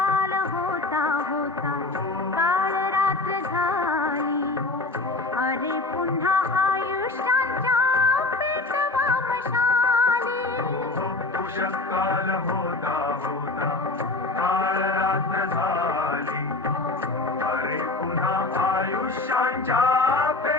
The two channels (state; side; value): quieter; right; 3.3 dB